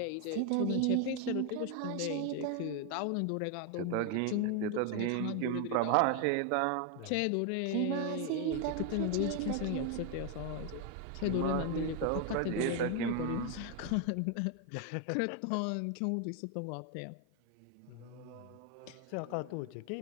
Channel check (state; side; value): different; both; correlation 0.01